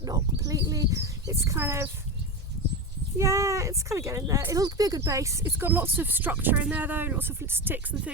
not completely. It's kind of, yeah, it's kind of getting there. It'll be a good base. It's got lots of structure in there though, lots of sticks and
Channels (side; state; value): both; normal; correlation 0.19